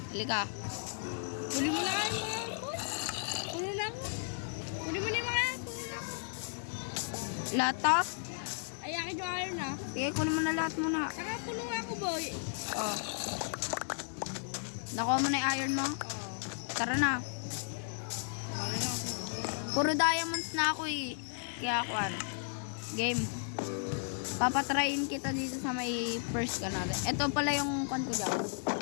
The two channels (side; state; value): right; silent; digital silence